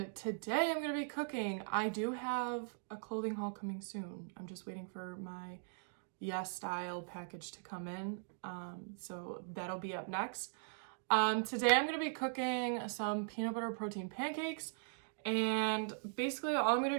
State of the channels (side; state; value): left; silent; digital silence